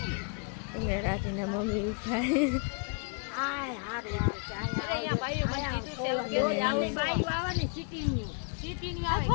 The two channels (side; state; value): right; quieter; 38.6 dB